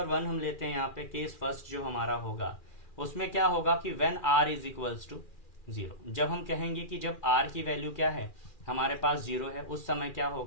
1 हम लेते हैं यहाँ पे। केस फर्स्ट जो हमारा होगा उसमें क्या होगा कि when r is equals to 0। जब हम कहेंगे कि जब r की वैल्यू क्या है, हमारे पास 0 है, उस समय क्या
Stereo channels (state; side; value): late; right; 2.4 ms